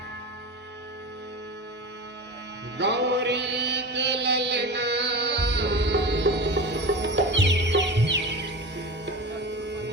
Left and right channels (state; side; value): normal; both; correlation 0.29